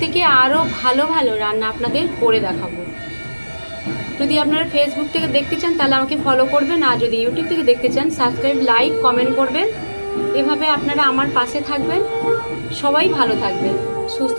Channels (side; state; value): both; inverted; correlation -1.00